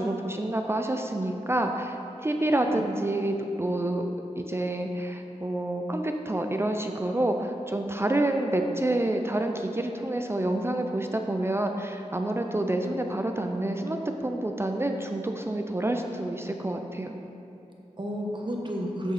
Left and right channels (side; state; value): both; normal; correlation 0.86